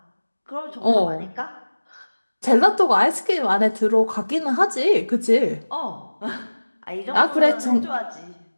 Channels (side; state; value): both; inverted; correlation -1.00